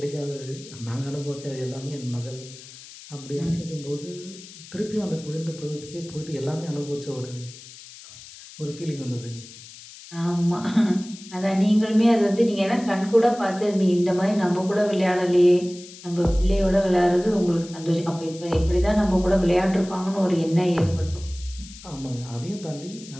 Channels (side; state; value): left; noise; hiss, 17 dB below the sound